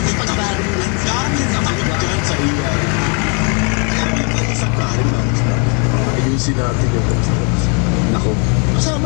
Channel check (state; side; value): quieter; right; 36.9 dB